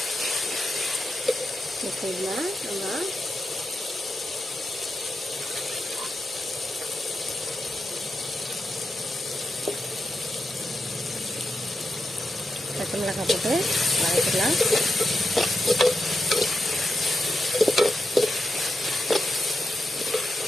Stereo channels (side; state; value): both; normal; correlation 0.87